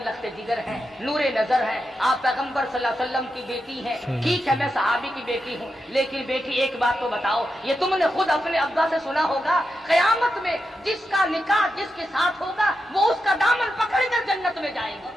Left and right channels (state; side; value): normal; both; correlation 0.88